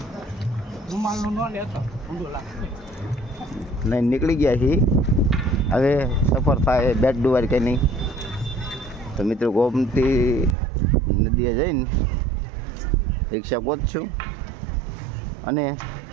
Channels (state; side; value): drops out; left; at 10.6 s